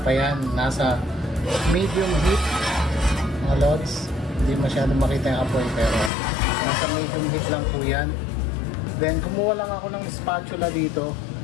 yan, nasa medium heat, mga lods. Hindi masyadong makita yung apoy, pero nasa medium heat lang po yan. Then kumuha lang ako ng spatula dito.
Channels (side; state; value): right; drops out; at 6.1 s